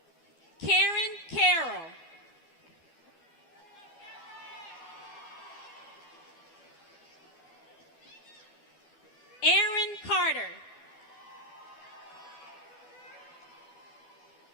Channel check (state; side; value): late; right; 12 ms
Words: Karen Carroll. Aaron Carter.